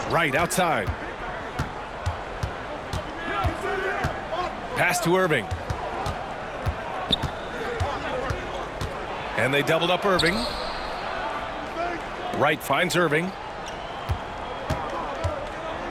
Right outside. Pass to Irving. And they doubled up Irving. Wright finds Irving.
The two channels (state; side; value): identical; both; correlation 1.00